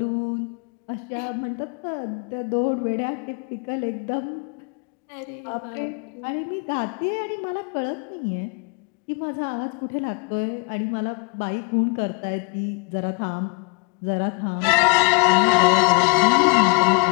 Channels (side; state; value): right; quieter; 34.8 dB